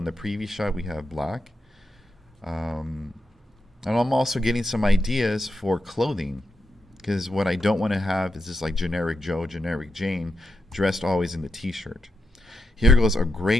the previous shot, we have black. And I'm also getting some ideas for clothing, because what I don't want to have is this like generic Joe, generic Jane, dressed always in the t-shirt. Here goes a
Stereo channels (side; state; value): both; normal; correlation 0.85